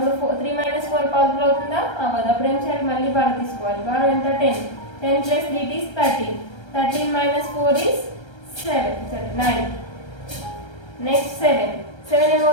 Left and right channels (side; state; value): right; late; 1.3 ms